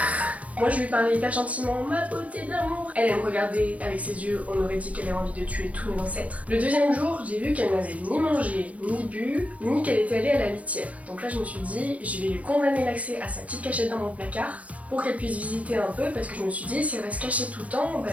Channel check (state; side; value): late; left; 0.066 ms